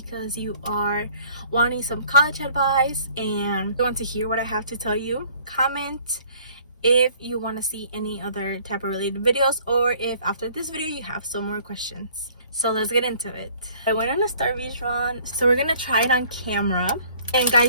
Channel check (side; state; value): both; inverted; correlation -0.55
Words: you are wanting some college advice and you want to hear what I have to tell you. Comment if you want to see any other type of related videos, or if after this video you have some more questions. So let's get into it. I went on a Starbucks run, so we're gonna try it on camera. And